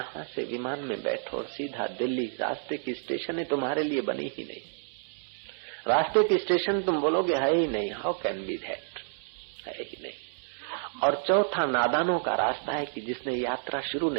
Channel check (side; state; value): left; silent; 58 dB below the other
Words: से विमान में बैठो और सीधा दिल्ली, रास्ते की स्टेशनें तुम्हारे लिए बनी ही नहीं। रास्ते की स्टेशन तुम बोलोगे है ही नहीं, हाउ कैन बी दैट, है ही नहीं। और चौथा नादानों का रास्ता है कि जिसने यात्रा शुरू